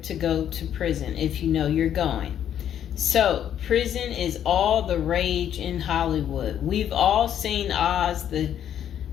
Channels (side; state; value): right; quieter; 10.0 dB